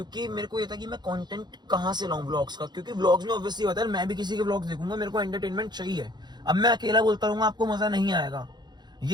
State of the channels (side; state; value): left; late; 0.21 ms